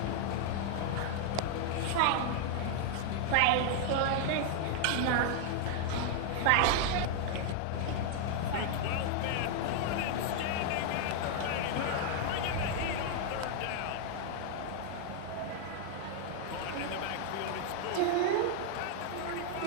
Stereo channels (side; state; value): both; different; correlation 0.00